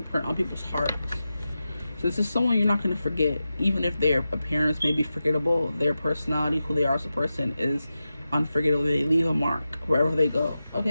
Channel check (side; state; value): both; inverted; correlation -0.92